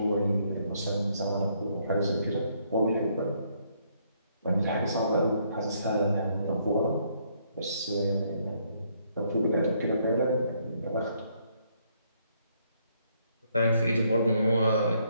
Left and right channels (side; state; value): both; inverted; correlation -0.71